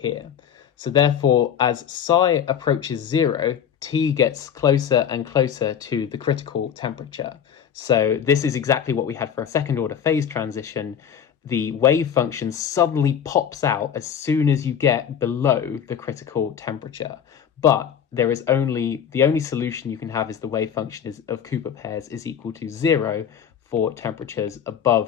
So therefore, as psi approaches 0, T gets closer and closer to the critical temperature. So this is exactly what we had for a second order phase transition. The wave function suddenly pops out as soon as you get below the critical temperature. But the only solution you can have is the wave function of Cooper pairs is equal to 0 for temperatures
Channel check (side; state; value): right; quieter; 8.4 dB